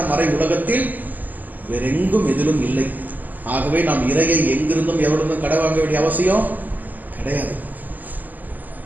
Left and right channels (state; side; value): late; left; 0.083 ms